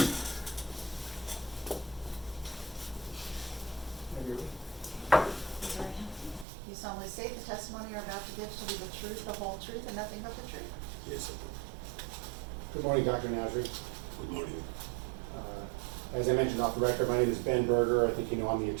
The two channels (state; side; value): drops out; left; at 6.5 s